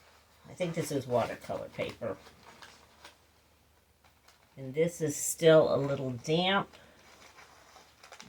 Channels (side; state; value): both; identical; correlation 1.00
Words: I think this is watercolor paper. And this is still a little damp,